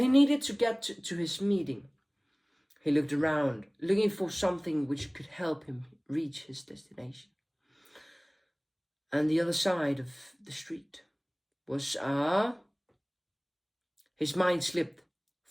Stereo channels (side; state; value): both; identical; correlation 1.00